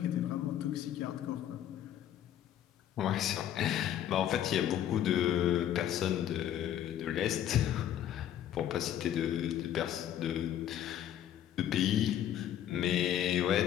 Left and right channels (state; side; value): quieter; right; 11.0 dB